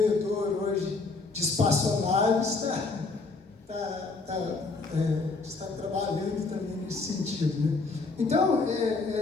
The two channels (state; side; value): quieter; right; 3.9 dB